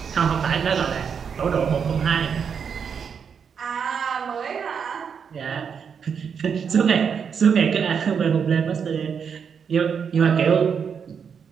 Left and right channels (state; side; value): quieter; left; 6.8 dB